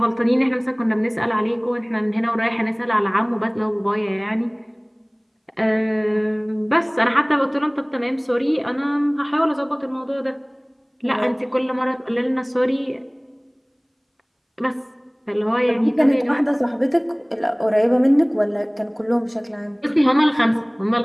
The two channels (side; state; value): both; identical; correlation 1.00